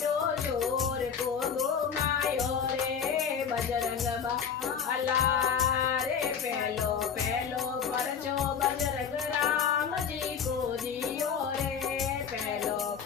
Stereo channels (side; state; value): right; quieter; 7.1 dB